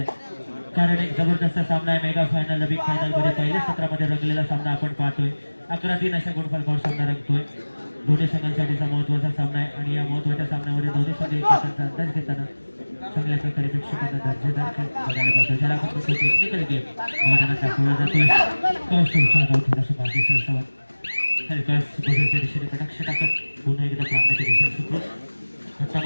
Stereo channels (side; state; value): both; inverted; correlation -1.00